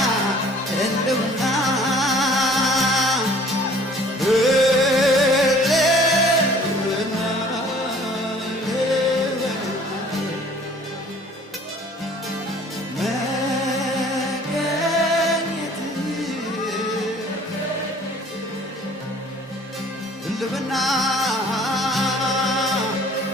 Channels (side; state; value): both; normal; correlation 0.52